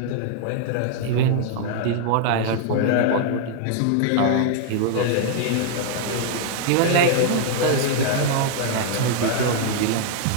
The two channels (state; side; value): different; both; correlation 0.00